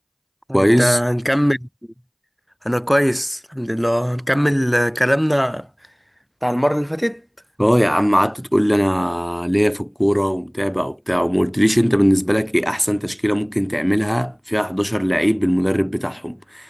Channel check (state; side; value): identical; both; correlation 1.00